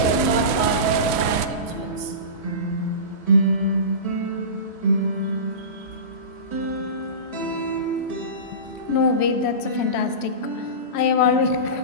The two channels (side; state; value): right; late; 3.1 ms